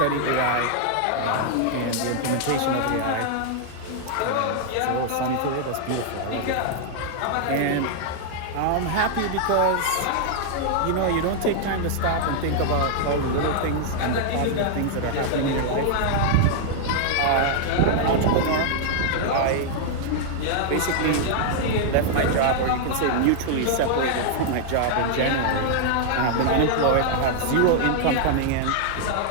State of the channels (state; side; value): different; both; correlation -0.01